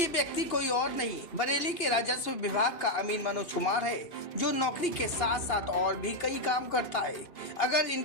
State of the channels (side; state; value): right; late; 2.8 ms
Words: व्यक्ति कोई और नहीं बरेली के राजस्व विभाग का अमीन मनोज कुमार है, जो नौकरी के साथ साथ और भी कई काम करता है। अगर